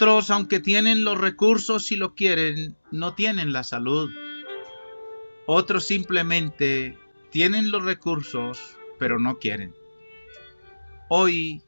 aunque tienen los recursos y lo quieren, no tienen la salud. Otros simplemente tienen los recursos, pero no quieren. Hoy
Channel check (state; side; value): inverted; both; correlation -1.00